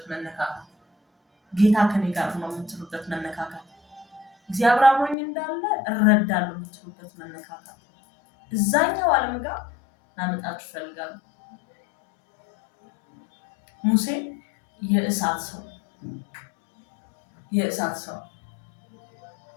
መነካካት፣ ጌታ ከኔ ጋር ነው የምትሉበት መነካካት፣ እግዚአብሔር አብሮኝ እንዳለ እረዳለሁ የምትሉበት መነካካት እዛኛው ዓለም ጋር ላመጣችሁ እፈልጋለሁ። ሙሴ የእሳት ሰው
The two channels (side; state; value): right; drops out; at 5.2 s